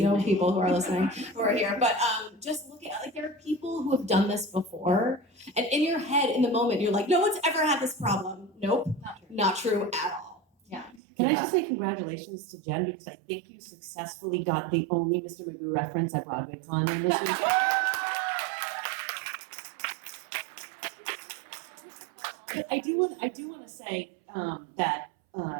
people who are listening, who are here. But just look at, like, there are people who have done this before, and in your head, in the moment, you're like, no one's ever had this problem. Nope, not true at all. Yeah. Can I just say congratulations to Jen, because I think you successfully got the only Mr. Magoo reference at BroadwayCon in this week. But I do want to say that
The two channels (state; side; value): drops out; left; at 11.0 s